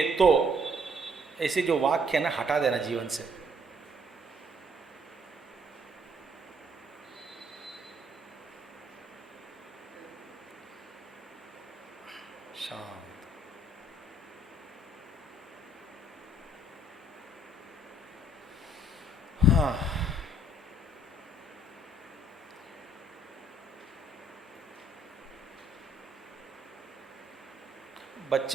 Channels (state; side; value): normal; both; correlation 0.64